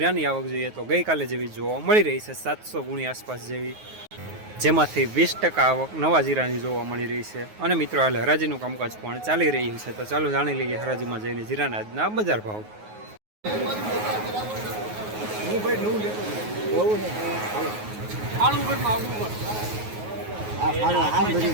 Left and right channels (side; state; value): left; late; 9.4 ms